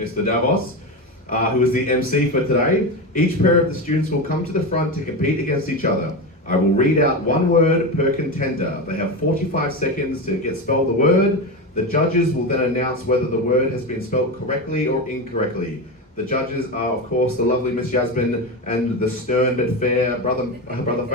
Davos, who is the MC for today. Each pair of the students will come to the front to compete against each other. I will read out 1 word per contender. They have 45 seconds to spell the word. The judges will then announce whether the word has been spelled correctly or incorrectly. The judges are, of course, the lovely Miss Yasmin and the stern but fair brother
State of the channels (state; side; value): normal; both; correlation 0.18